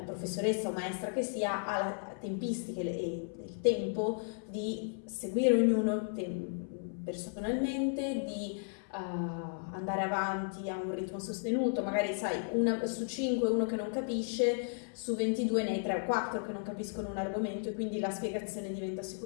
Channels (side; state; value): right; silent; 55 dB below the other